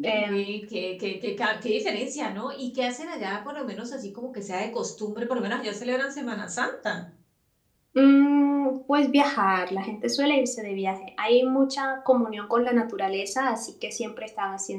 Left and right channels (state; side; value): identical; both; correlation 1.00